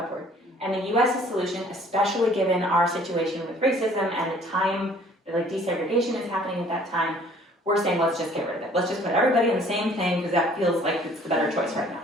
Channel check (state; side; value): normal; both; correlation 0.55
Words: And the US's solution, especially given our situation with racism and the time that desegregation is happening at that time, we're saying let's just get rid of it. Let's just put everybody in the same thing because that feels like it's the better choice right now.